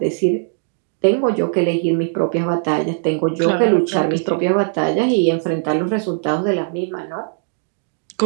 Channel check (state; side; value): silent; left; digital silence